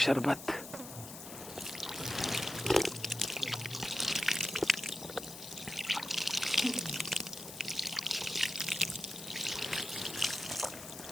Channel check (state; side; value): noise; left; hiss, 12 dB below the sound